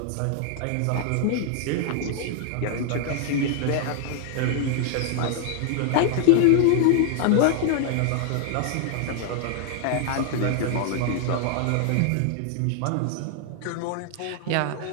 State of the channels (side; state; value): both; different; correlation 0.00